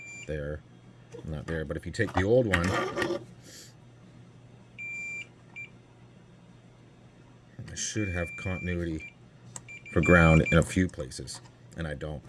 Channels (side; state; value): both; identical; correlation 1.00